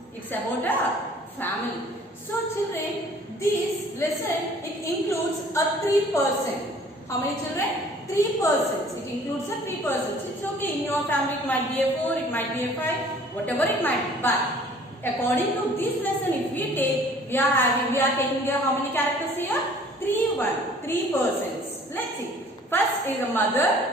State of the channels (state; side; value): normal; both; correlation 0.53